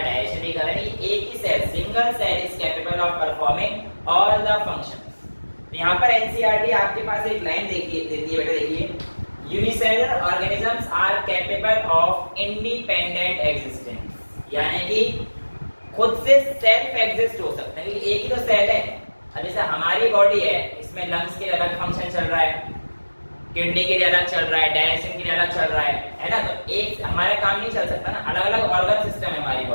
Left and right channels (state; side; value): inverted; both; correlation -1.00